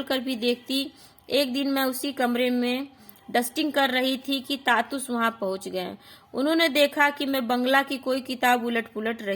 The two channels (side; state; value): both; identical; correlation 1.00